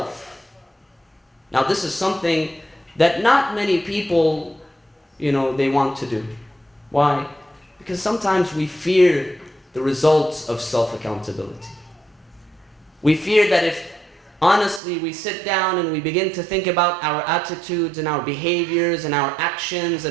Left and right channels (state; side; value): drops out; left; at 14.8 s